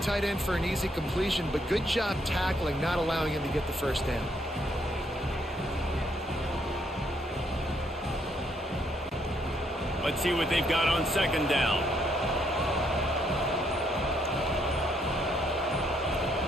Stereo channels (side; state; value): both; normal; correlation 0.72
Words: end for an easy completion, but good job tackling, not allowing him to get the first down. Let's see what they've got on second down.